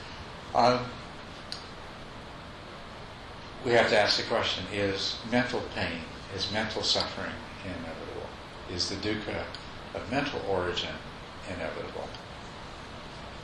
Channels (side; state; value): both; identical; correlation 1.00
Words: We have to ask the question, is mental pain, is mental suffering inevitable? Is the dukkha of mental origin inevitable?